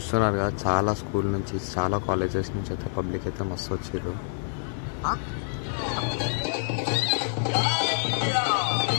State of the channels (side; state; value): right; silent; 57 dB below the other